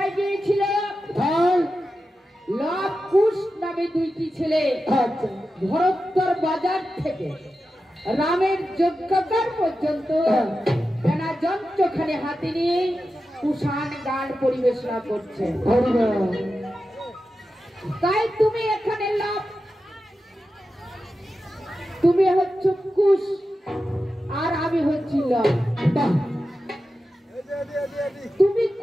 গিয়েছিল? লব কুশ নামে দুইটি ছেলে ভরতর বাজার থেকে রামের যজ্ঞকার পর্যন্ত বেনা যন্ত্রখানে হাতে নিয়ে কুষাণ গান পরিবেশনা করছে। তাই তুমি এখানে লব, তুমি হচ্ছে কুশ আর আমি হচ্ছি লব। তুমি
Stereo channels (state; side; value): normal; both; correlation 0.91